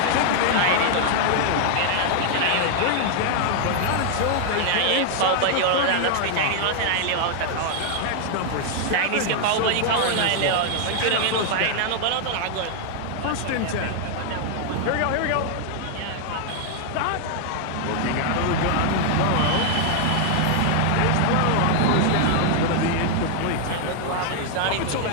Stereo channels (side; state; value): both; different; correlation 0.00